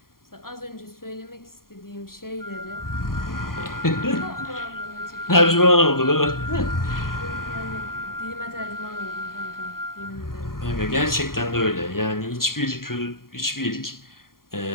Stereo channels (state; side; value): late; right; 0.92 ms